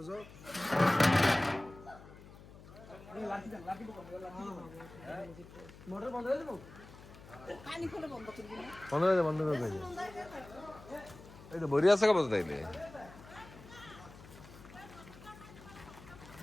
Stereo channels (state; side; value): noise; left; hum, 18 dB below the sound